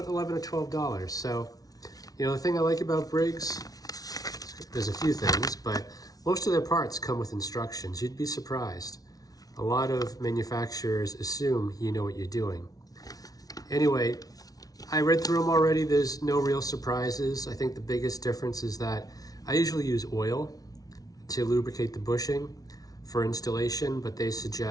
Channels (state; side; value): late; right; 0.18 ms